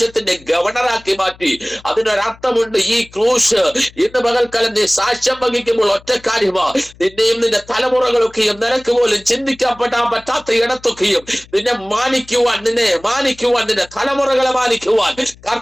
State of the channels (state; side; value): noise; left; hum, 24 dB below the sound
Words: ഗവർണറാക്കി മാറ്റി. അതിനൊരർത്ഥമുണ്ട്. ഈ ക്രൂശ് ഇന്ന് പകൽക്കാലം നീ സാക്ഷ്യം വഹിക്കുമ്പോൾ ഒറ്റക്കാര്യമാ. നിന്നെയും നിന്റെ തലമുറകളൊക്കെയും നിനക്ക് പോലും ചിന്തിക്കാൻ പറ്റാത്ത ഇടത്തൊക്കെയും നിന്നെ മാനിക്കുവാൻ, നിന്റെ തലമുറകളെ മാനിക്കുവാൻ